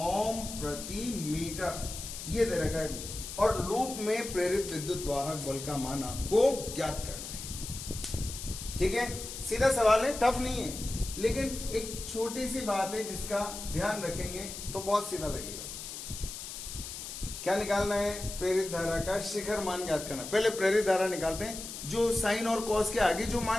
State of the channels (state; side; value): noise; left; hiss, 9 dB below the sound